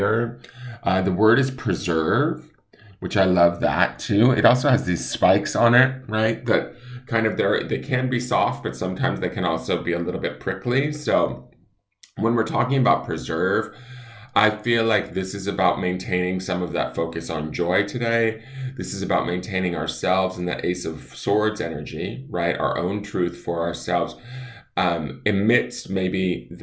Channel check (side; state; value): both; identical; correlation 1.00